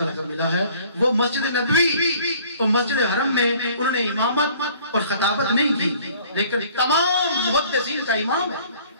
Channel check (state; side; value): inverted; both; correlation -0.54